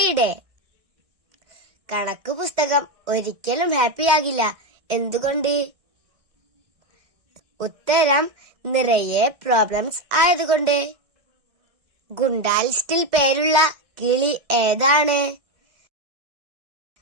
കണക്ക് പുസ്തകം ഒരിക്കലും ഹാപ്പിയാകില്ല. എന്തുകൊണ്ട്? ഉത്തരം നിറയെ പ്രോബ്ലംസ് ആയതുകൊണ്ട്. ഗുണ്ടാ ലിസ്റ്റിൽ പേരുള്ള കിളി ഏതാണ്?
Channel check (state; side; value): late; left; 1.6 ms